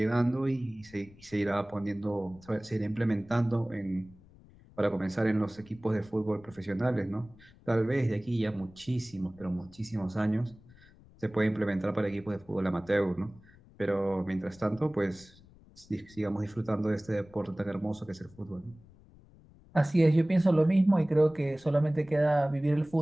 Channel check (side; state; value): left; noise; rumble, 25 dB below the sound